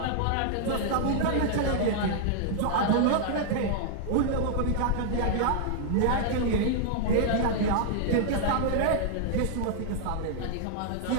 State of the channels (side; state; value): both; different; correlation -0.01